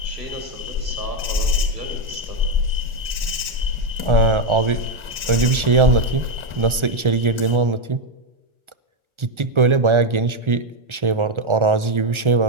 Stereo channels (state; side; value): late; left; 1.4 ms